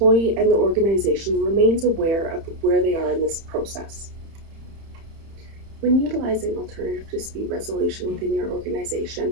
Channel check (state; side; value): late; left; 30 ms